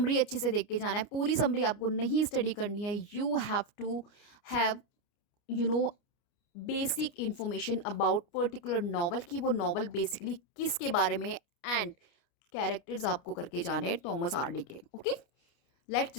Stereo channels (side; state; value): right; late; 29 ms